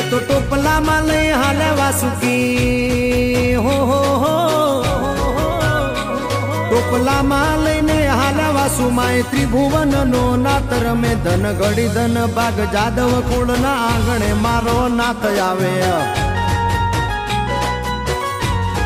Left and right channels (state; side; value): identical; both; correlation 1.00